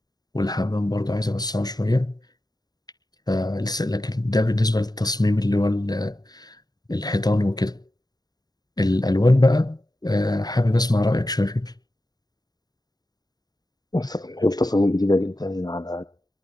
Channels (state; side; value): late; right; 0.19 ms